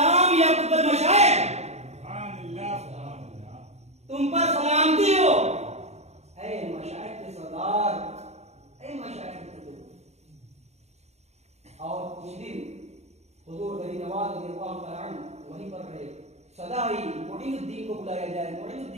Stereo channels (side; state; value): left; late; 0.32 ms